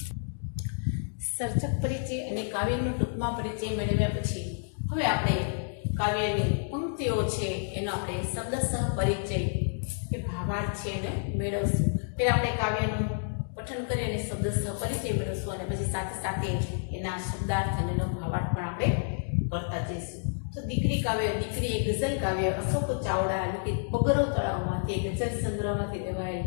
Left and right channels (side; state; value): right; silent; digital silence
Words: સર્જક પરિચય અને કાવ્યનો ટૂંકમાં પરિચય મેળવ્યા પછી હવે આપણે કાવ્યની પંક્તિઓ છે એનો આપણે શબ્દસહ પરિચય કે ભાવાર્થ છે એને મેળવશું. પહેલા આપણે કાવ્યનું પઠન કરી અને શબ્દસહ પરિચય મેળવશું અને પછી સાથે સાથે એના શબ્દાર્થ અને એનો ભાવાર્થ પણ આપણે કરતા જઈશું. તો દીકરી કાવ્ય, દીકરી એ ગઝલ કાવ્ય અશોક ચાવડા લિખિત પગરવ તળાવમાંથી ગઝલ સંગ્રહમાંથી લેવાયેલ